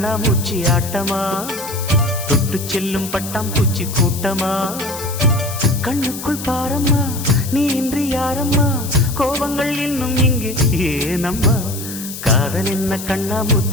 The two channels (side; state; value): left; noise; hiss, 10 dB below the sound